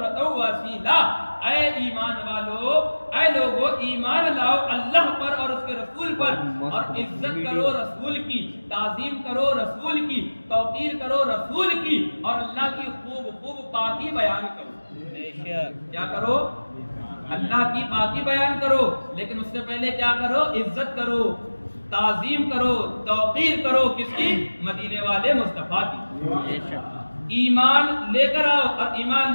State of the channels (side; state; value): both; inverted; correlation -1.00